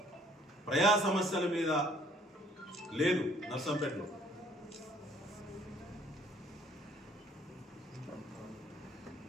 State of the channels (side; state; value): both; normal; correlation 0.59